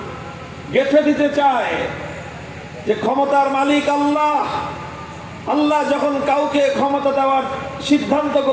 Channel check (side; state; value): both; identical; correlation 1.00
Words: গেঁথে দিতে চায় যে ক্ষমতার মালিক আল্লাহ। আল্লাহ যখন কাউকে ক্ষমতা দেওয়ার সিদ্ধান্ত